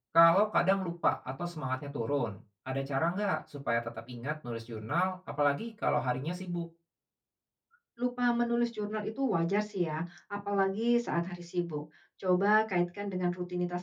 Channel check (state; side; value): identical; both; correlation 1.00